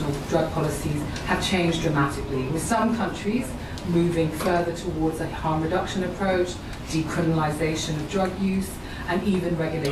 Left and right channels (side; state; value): both; identical; correlation 1.00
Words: drug policies have changed dramatically, with some countries moving further towards a harm reduction approach, decriminalization of drug use, and even